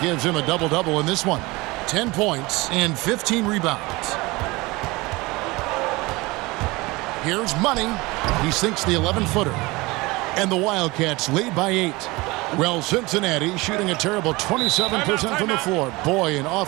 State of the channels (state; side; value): quieter; left; 22.7 dB